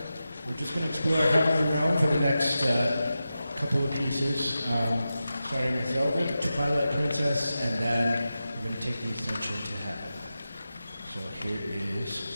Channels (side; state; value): both; inverted; correlation -0.92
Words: We're just going to explore Heavenly Realm for the next couple of pieces, starting with Zelda, the Twilight Princess, and then we're going to take the ascension to heaven. So here is